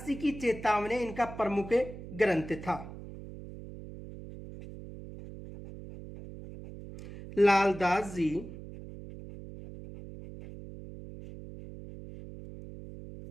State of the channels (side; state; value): right; noise; hum, 13 dB below the sound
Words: जी की चेतावनी इनका प्रमुख ग्रंथ था। लालदास जी